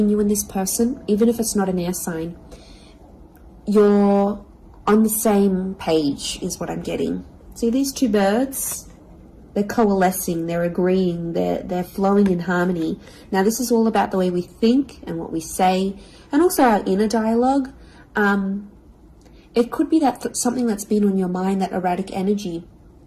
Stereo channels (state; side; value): identical; both; correlation 1.00